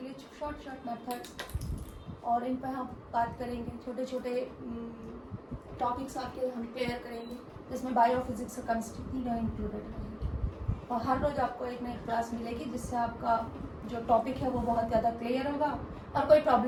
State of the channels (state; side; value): identical; both; correlation 1.00